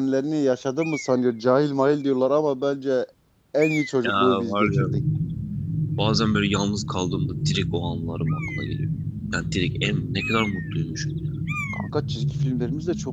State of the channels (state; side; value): identical; both; correlation 1.00